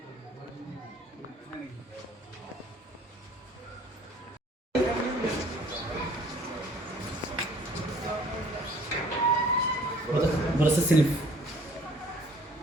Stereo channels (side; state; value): both; normal; correlation 0.56